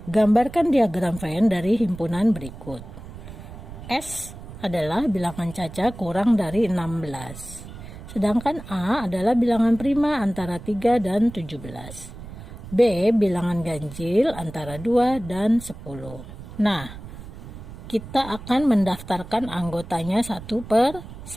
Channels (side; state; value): right; noise; rumble, 14 dB below the sound